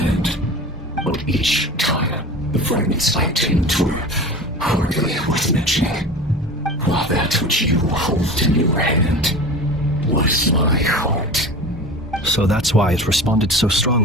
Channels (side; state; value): both; normal; correlation 0.34